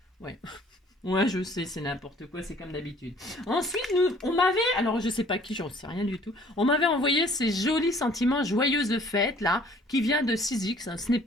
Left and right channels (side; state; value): both; normal; correlation 0.55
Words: Ouais. Ouais, je sais, c'est n'importe quoi, c'est comme d'habitude. Ensuite, on m'avait, alors je sais pas qui, j'en sais rien du tout, on m'avait envoyé ces jolis sentiments joyeuses fêtes, là, qui vient de 6X. Hein. Ce n'est